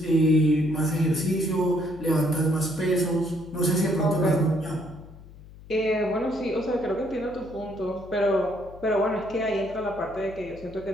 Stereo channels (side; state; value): left; noise; hum, 19 dB below the sound